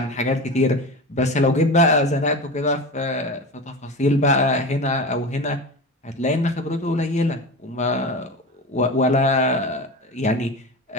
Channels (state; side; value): normal; both; correlation 0.27